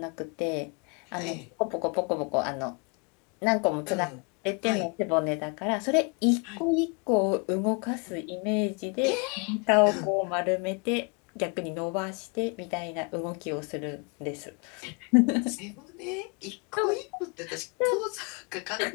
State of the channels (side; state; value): right; quieter; 34.3 dB